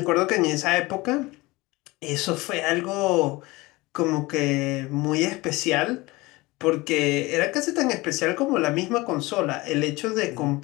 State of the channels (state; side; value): quieter; right; 21.8 dB